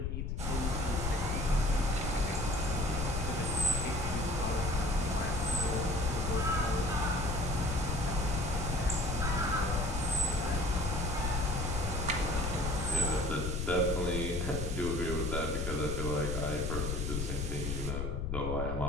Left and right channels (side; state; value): left; noise; rumble, 1 dB below the sound